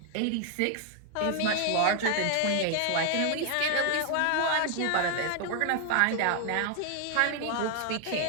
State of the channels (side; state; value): both; different; correlation 0.00